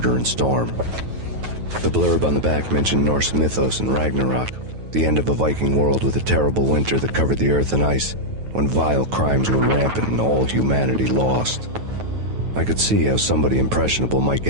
and Storm. The blurb on the back mentioned Norse mythos and Ragnarok, the end of a Viking world with a terrible winter that covered the earth in ice, when vile crimes were rampant and all humanity lost. I could see how somebody impressionable might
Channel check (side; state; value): left; late; 9.3 ms